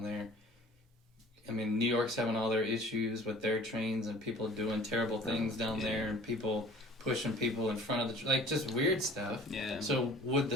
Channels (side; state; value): both; normal; correlation 0.48